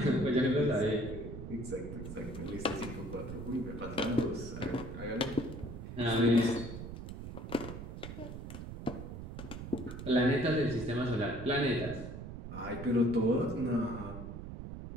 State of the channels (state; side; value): noise; right; rumble, 9 dB below the sound